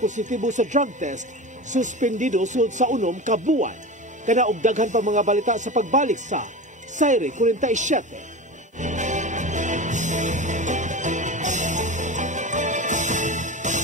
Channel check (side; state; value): both; normal; correlation 0.28